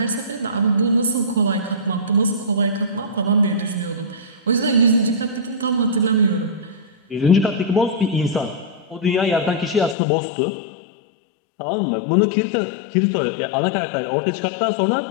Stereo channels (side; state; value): right; drops out; at 10.0 s